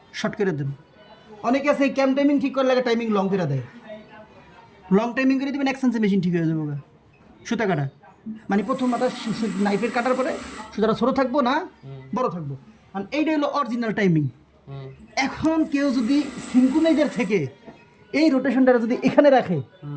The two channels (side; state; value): both; identical; correlation 1.00